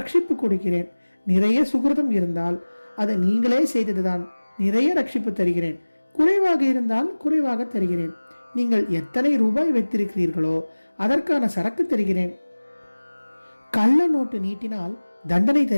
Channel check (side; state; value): both; inverted; correlation -1.00